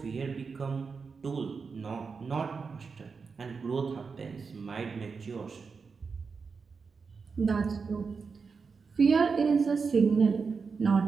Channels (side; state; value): left; quieter; 5.1 dB